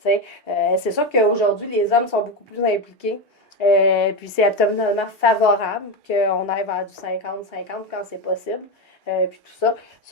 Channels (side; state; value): both; normal; correlation 0.13